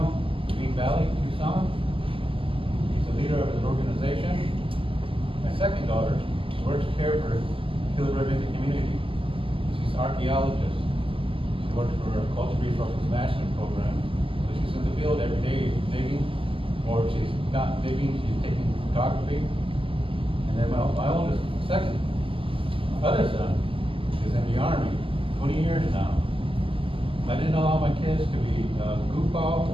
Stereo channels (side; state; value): left; late; 0.26 ms